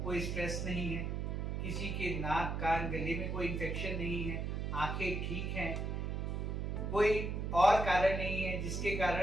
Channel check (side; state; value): right; noise; hum, 2 dB below the sound